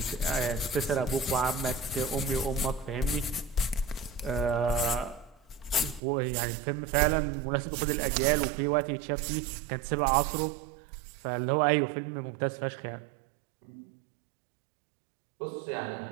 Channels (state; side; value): drops out; left; at 6.0 s